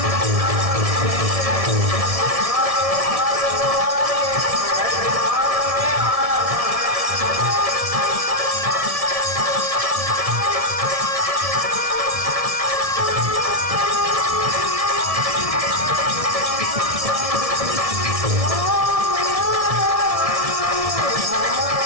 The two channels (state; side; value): late; left; 1.7 ms